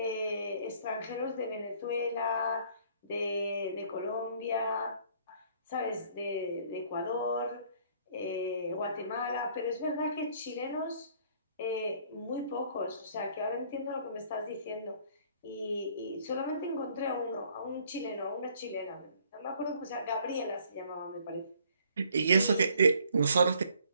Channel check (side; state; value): both; inverted; correlation -0.60